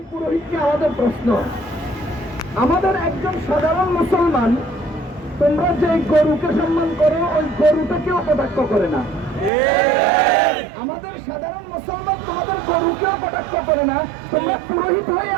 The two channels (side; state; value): left; drops out; at 9.5 s